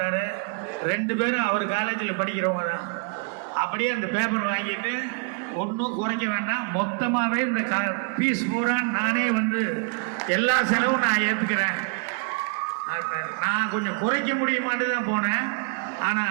2 பேரும் அவர் காலேஜில் படிக்கிறவங்க தான். அப்படியே அந்த பேப்பர் வாங்கிட்டு, ஒன்றும் குறைக்க வேண்டாம், மொத்தமாகவே இந்த ஃபீஸ் பூரா நானே வந்து எல்லா செலவும் நான் ஏற்றுக்கிறேன். நான் கொஞ்சம் குறைக்க முடியுமான்னு தான் போனேன்.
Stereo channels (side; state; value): left; quieter; 38.5 dB